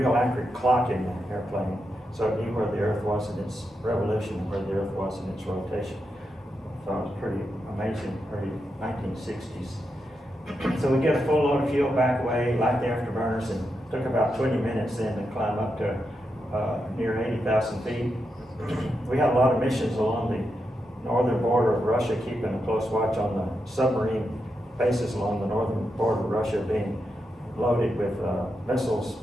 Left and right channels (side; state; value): both; normal; correlation 0.85